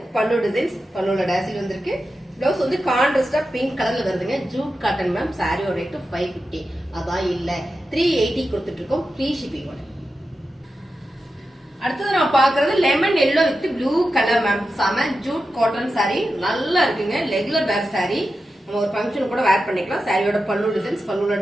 பல்லு டிசைன்ஸ் பல்லுல டாசில் வந்திருக்கு. ப்ளவுஸ் வந்து கான்ட்ராஸ்டா பிங்க் கலர்ல வருதுங்க. ஜூட் காட்டன் மேம் சாரியோட ரேட் 550. அதான் இல்ல 380 கொடுத்துட்டு இருக்கோம் ஃப்ரீ ஷிப்பிங்கோட. அடுத்தது நம்ம பாக்குறது lemon yellow with blue colour ma'am. செம ஜூட் காட்டன் சாரி நல்லா இருக்குங்க. ரெகுலர் வேர் சாரி நம்ம ஒரு ஃபங்க்ஷன் கூட வேர் பண்ணிக்கலாம். சாரியோட பல்லு டிசைன்ஸ் பல்லுல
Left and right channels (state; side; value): normal; both; correlation 0.91